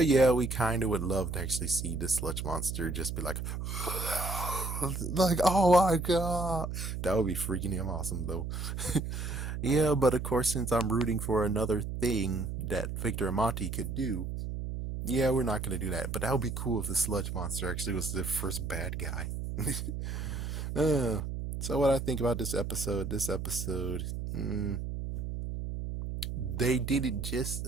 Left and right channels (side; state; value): right; noise; hum, 4 dB below the sound